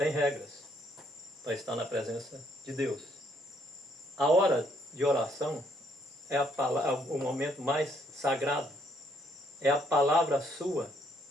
regras para estar na presença de Deus. A hora de oração é o momento mais sagrado. É a palavra sua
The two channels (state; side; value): normal; both; correlation 0.69